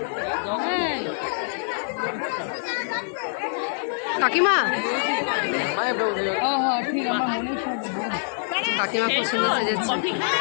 কাকিমা, কাকিমা খুব সুন্দর সেজেছে।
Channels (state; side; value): silent; right; digital silence